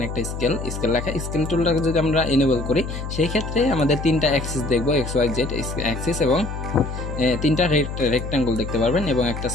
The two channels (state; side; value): noise; left; hum, 7 dB below the sound